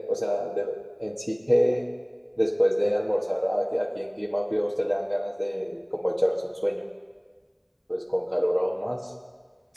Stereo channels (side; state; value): both; identical; correlation 1.00